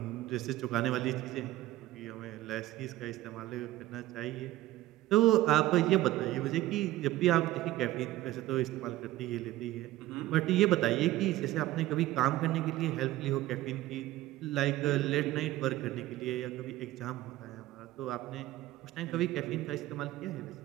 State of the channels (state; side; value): quieter; left; 15.9 dB